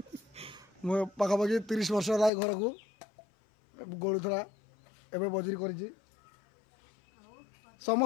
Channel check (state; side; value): drops out; right; at 2.3 s